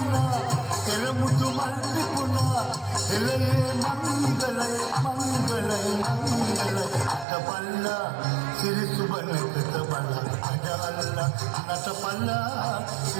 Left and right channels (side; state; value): left; drops out; at 7.2 s